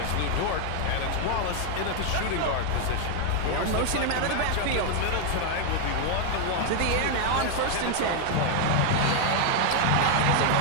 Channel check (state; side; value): different; both; correlation 0.00